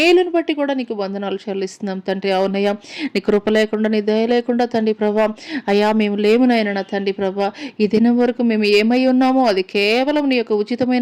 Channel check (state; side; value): identical; both; correlation 1.00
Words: బట్టి కూడా నీకు వందనాలు చెల్లిస్తున్నాం తండ్రి. అవునయ్యా, నీ కృప లేకుండా, నీ దయ లేకుండా తండ్రి ప్రభా అయ్యా మేము లేమునైనా నా తండ్రి ప్రభా. ఈ దినం వరకు మేము ఏమై ఉన్నామో అది కేవలం నీ యొక్క